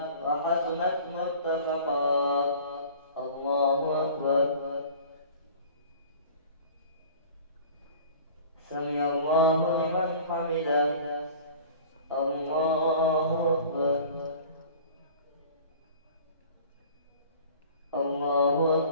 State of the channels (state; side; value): inverted; both; correlation -0.44